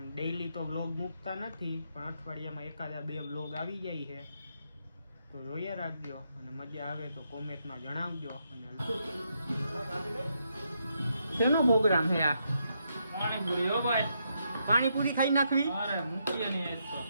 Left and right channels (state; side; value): inverted; both; correlation -0.79